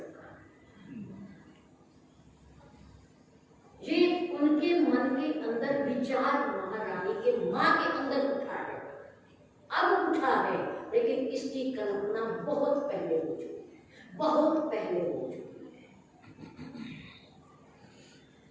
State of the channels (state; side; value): identical; both; correlation 1.00